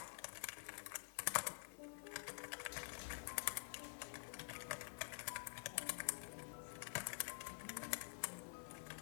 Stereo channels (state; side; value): silent; right; digital silence